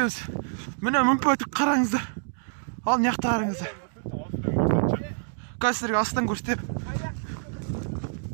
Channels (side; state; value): left; silent; digital silence